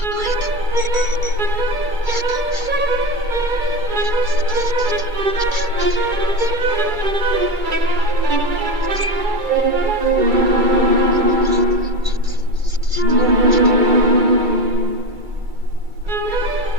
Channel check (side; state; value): left; late; 2.3 ms